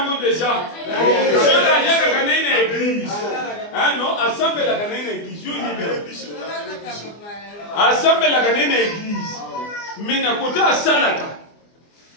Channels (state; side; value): late; right; 24 ms